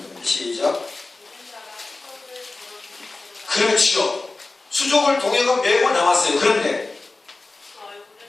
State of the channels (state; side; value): quieter; right; 3.4 dB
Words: 됩니다. 시작. 그렇죠. 수족을 동해가 매고 나왔어요. 그런데